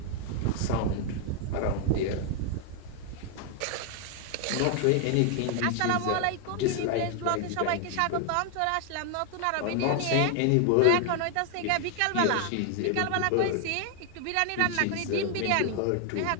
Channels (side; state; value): both; different; correlation 0.00